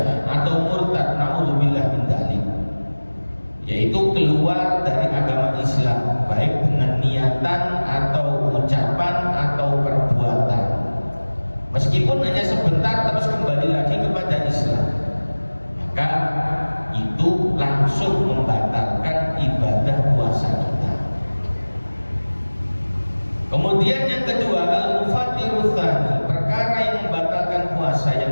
atau murtad, naudzubillah min dzalik, yaitu keluar dari agama Islam, baik dengan niatan atau ucapan atau perbuatan. Meskipun hanya sebentar terus kembali lagi kepada Islam, maka itu langsung membatalkan ibadah puasa kita. Kemudian yang kedua, al-mufattiru tsani, perkara yang membatalkan puasa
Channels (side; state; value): both; inverted; correlation -1.00